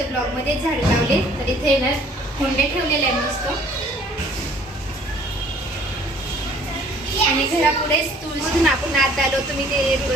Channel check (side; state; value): both; normal; correlation 0.56